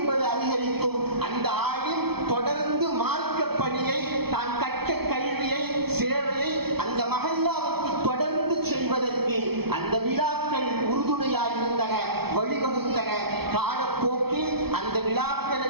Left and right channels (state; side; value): late; left; 0.96 ms